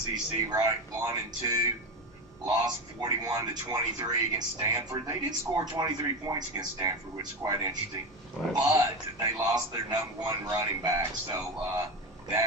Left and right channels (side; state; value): both; normal; correlation 0.19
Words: right? 1 and 2. Lost 41-23 against Stanford. They did score 23 points against Stanford, which is quite interesting. Right. But they lost their number 1 running back, so